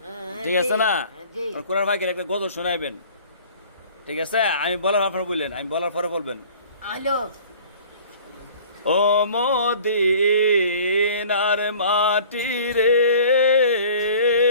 ঠিক আছে না? জি কোরআন ফাঁকের একটা গজল শোনাইবেন, ঠিক আছে? আমি বলার আপনার বললেন, আমি বলার পরে বলবেন। হ্যালো ও মদিনার মাটি রে,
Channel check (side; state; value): both; inverted; correlation -0.48